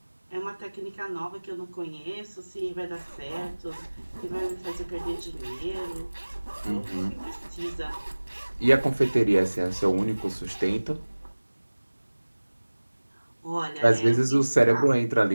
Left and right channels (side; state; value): both; inverted; correlation -1.00